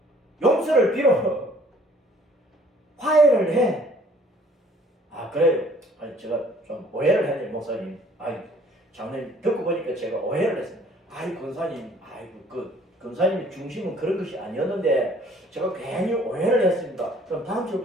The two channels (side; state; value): both; normal; correlation 0.57